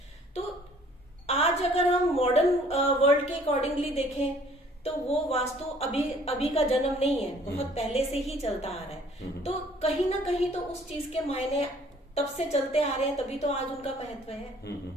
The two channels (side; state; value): both; normal; correlation 0.56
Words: तो आज अगर हम मॉडर्न वर्ल्ड के अकॉर्डिंगली देखें तो वो वास्तु अभी का जन्म नहीं है, बहुत पहले से ही चलता आ रहा है। तो कहीं ना कहीं तो उस चीज के मायने तब से चलते आ रहे हैं, तभी तो आज उनका महत्व है।